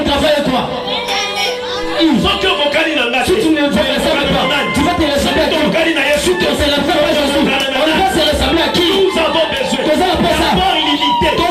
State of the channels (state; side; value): identical; both; correlation 1.00